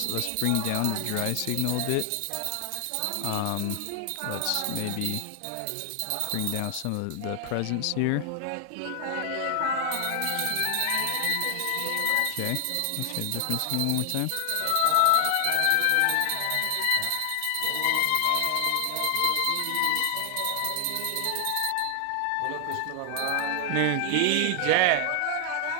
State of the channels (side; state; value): both; different; correlation 0.00